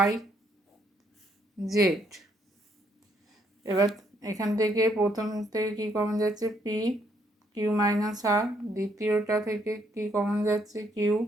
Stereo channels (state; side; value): normal; both; correlation 0.71